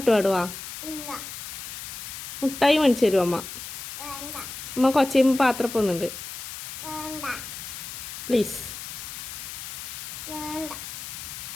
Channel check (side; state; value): left; noise; hiss, 9 dB below the sound